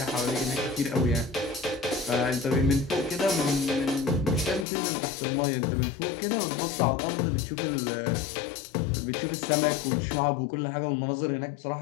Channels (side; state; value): right; drops out; at 4.7 s